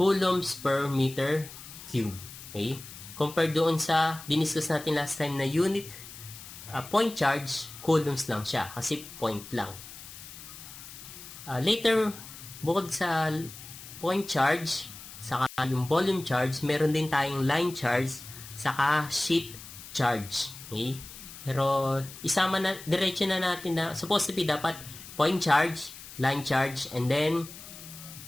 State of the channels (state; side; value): noise; left; hiss, 15 dB below the sound